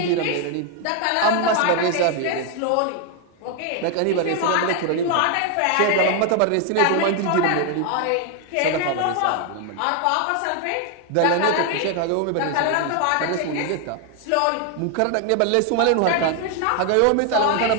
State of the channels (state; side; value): different; both; correlation 0.00